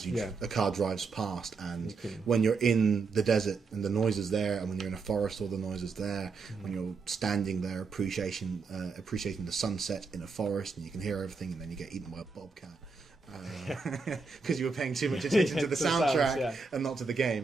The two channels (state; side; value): quieter; left; 4.4 dB